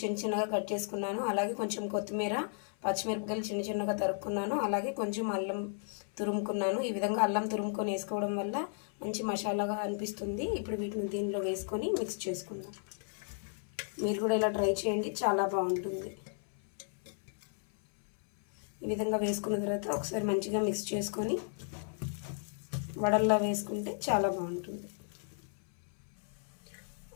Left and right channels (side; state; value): right; silent; 55 dB below the other